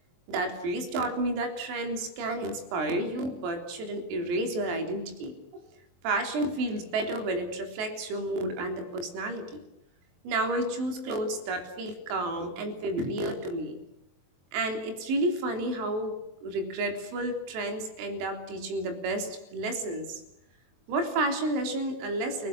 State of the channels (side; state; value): left; late; 23 ms